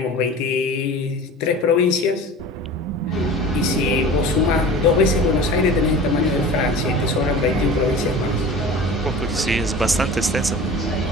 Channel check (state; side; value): normal; both; correlation 0.37